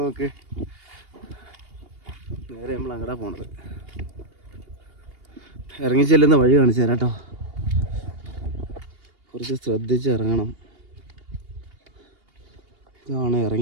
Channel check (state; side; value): late; left; 2.8 ms